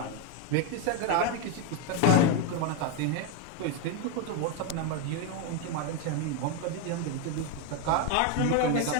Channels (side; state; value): both; different; correlation 0.02